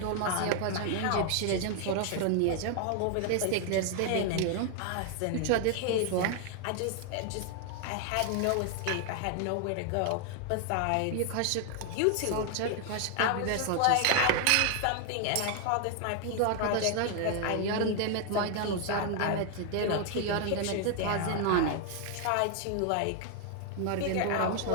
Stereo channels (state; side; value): different; both; correlation 0.00